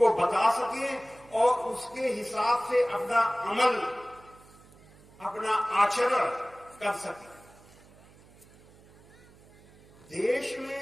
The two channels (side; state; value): right; noise; hum, 25 dB below the sound